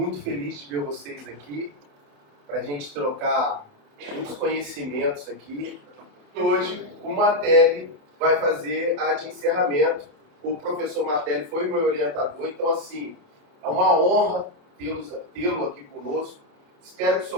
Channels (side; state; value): left; late; 28 ms